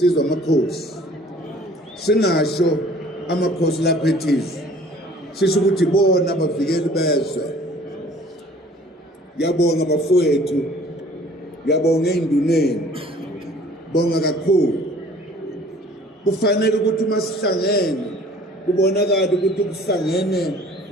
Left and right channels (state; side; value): normal; both; correlation 0.52